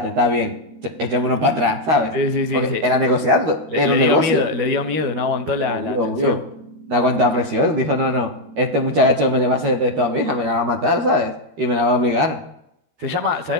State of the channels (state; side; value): late; left; 13 ms